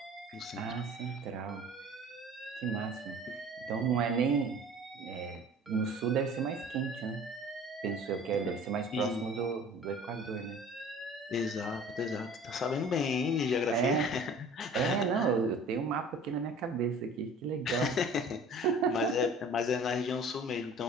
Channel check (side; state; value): both; normal; correlation 0.46